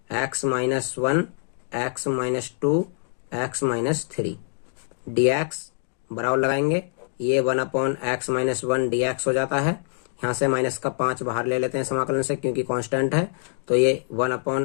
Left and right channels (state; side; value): silent; right; digital silence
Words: x-2 dx बराबर लगाएंगे, ये 1/x-1 dx हो जाता है। यहाँ से -5 बाहर ले लेते हैं समाकलन से क्योंकि कांस्टेंट है, तो ये